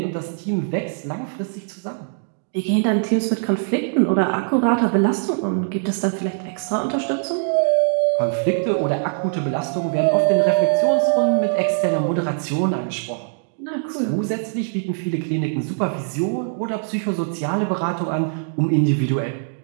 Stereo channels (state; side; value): silent; left; digital silence